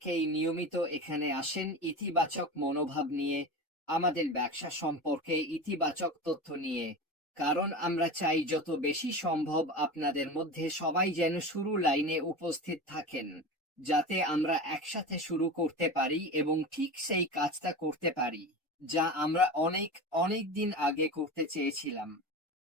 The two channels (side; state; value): both; normal; correlation 0.28